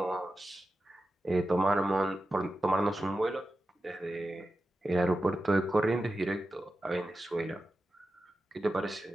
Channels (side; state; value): both; normal; correlation 0.92